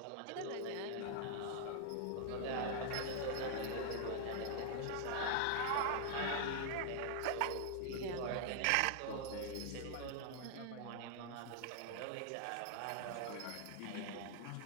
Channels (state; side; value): different; both; correlation 0.00